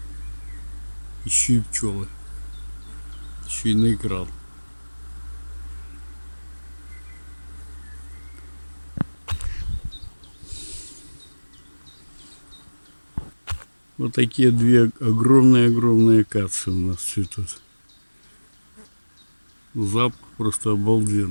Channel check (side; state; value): both; inverted; correlation -1.00